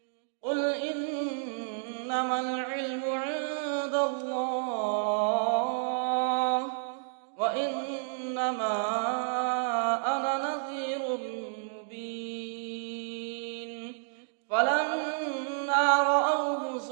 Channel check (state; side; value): silent; left; digital silence